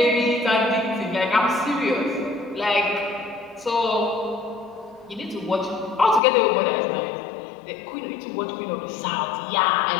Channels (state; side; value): drops out; right; at 6.2 s